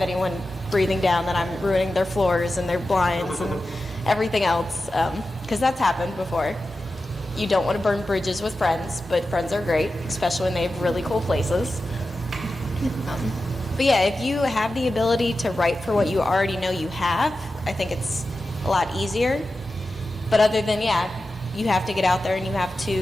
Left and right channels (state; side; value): normal; both; correlation 0.92